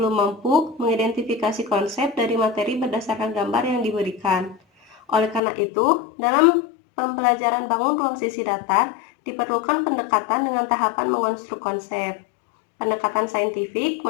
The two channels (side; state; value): right; drops out; at 5.4 s